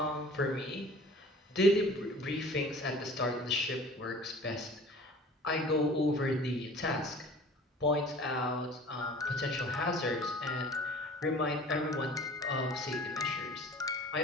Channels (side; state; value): both; normal; correlation 0.45